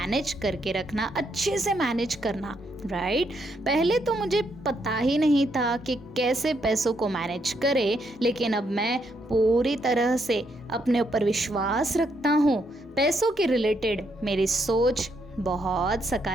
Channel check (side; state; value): both; normal; correlation 0.76